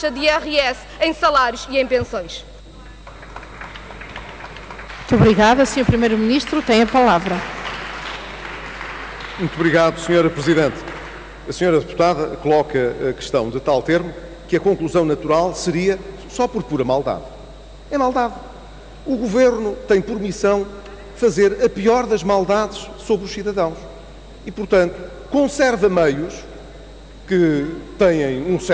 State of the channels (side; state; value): both; identical; correlation 1.00